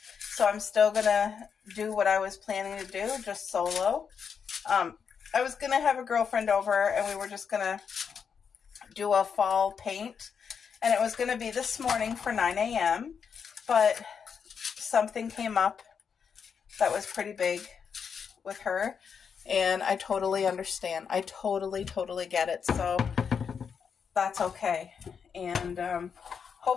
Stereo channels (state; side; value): quieter; right; 6.6 dB